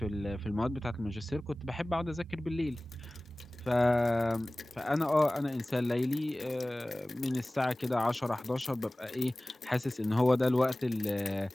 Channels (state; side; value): normal; both; correlation 0.98